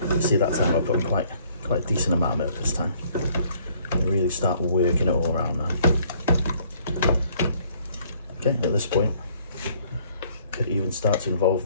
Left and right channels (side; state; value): both; inverted; correlation -0.62